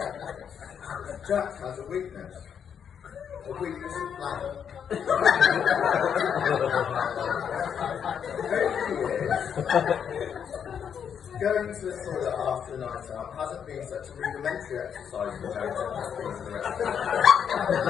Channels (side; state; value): right; quieter; 7.8 dB